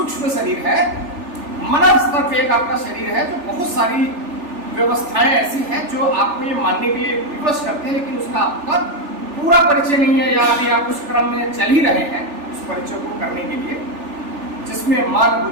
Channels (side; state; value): left; late; 3.4 ms